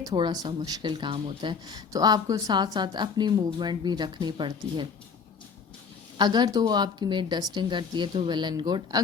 थोड़ा सा मुश्किल काम होता है, तो आपको साथ साथ अपनी मूवमेंट भी रखनी पड़ती है। अगर तो वो आपकी मेड डस्टिंग करती है तो वेल एंड गुड,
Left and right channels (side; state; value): right; quieter; 5.7 dB